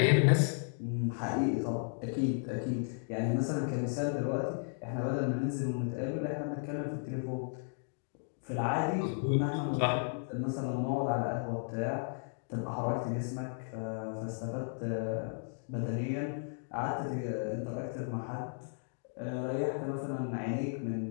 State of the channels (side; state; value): right; silent; digital silence